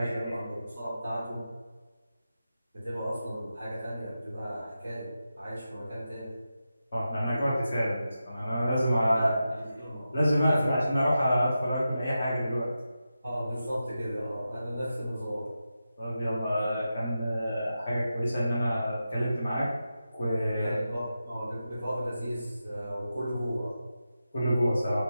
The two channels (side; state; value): both; inverted; correlation -0.90